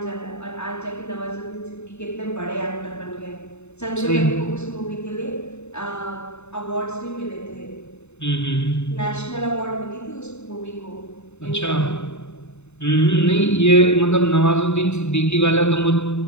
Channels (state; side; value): late; right; 0.82 ms